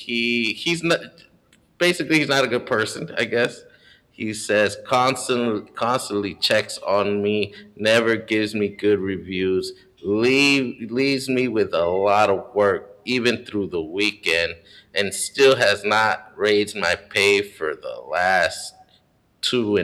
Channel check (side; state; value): both; identical; correlation 1.00